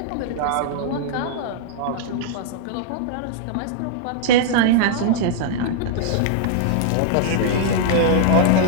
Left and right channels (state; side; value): different; both; correlation -0.01